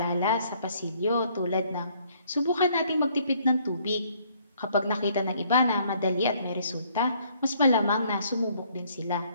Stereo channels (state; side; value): inverted; both; correlation -0.64